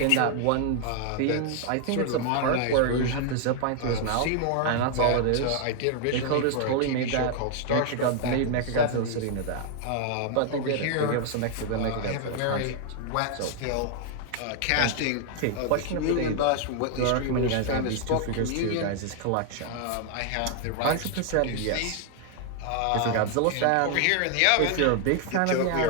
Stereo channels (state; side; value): different; both; correlation 0.00